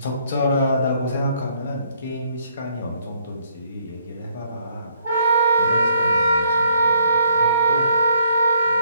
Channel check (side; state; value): both; inverted; correlation -0.69